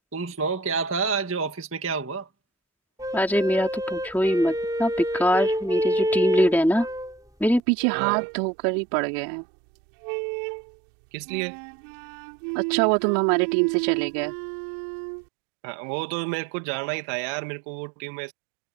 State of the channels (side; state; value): left; drops out; at 7.6 s